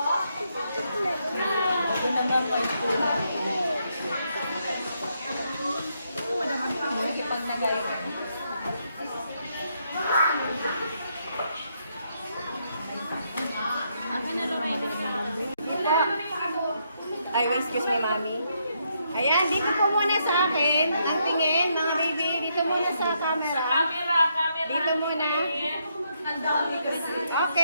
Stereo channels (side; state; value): both; inverted; correlation -0.77